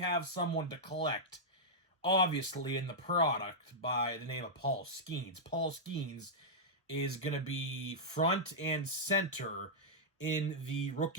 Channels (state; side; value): normal; both; correlation -0.09